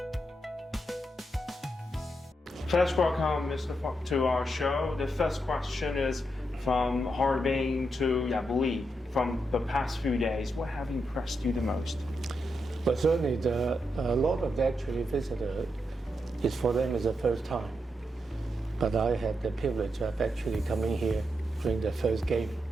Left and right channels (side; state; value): both; normal; correlation 0.83